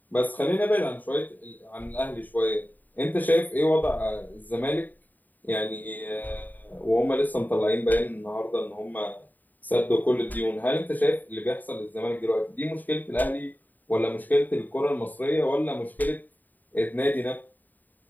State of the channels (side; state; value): right; late; 0.086 ms